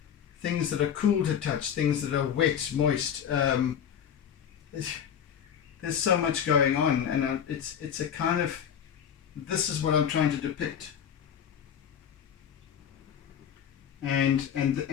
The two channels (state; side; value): quieter; right; 8.6 dB